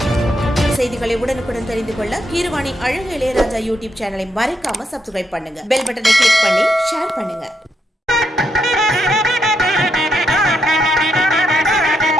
செய்திகளை உடனுக்குடன் தெரிந்து கொள்ள கீரவாணி அழகு இளையராஜா யூடியூப் சேனலை மறக்காம சப்ஸ்கிரைப் பண்ணுங்க. பெல் பட்டனை கிளிக் பண்ணி ஷேர் பண்ணுங்க.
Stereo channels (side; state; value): both; normal; correlation 0.79